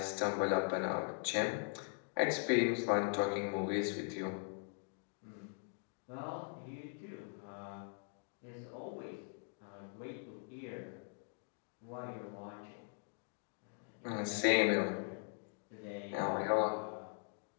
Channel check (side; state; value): right; silent; 51 dB below the other